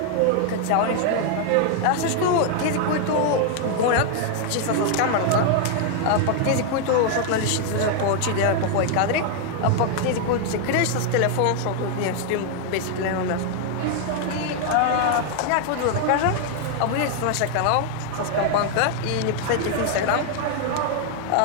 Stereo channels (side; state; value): both; different; correlation 0.00